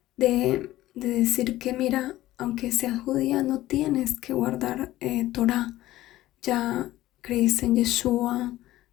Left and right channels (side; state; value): right; quieter; 15.7 dB